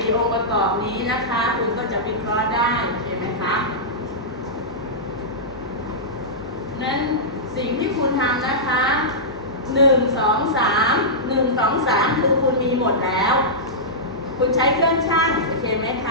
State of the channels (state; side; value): normal; both; correlation -0.14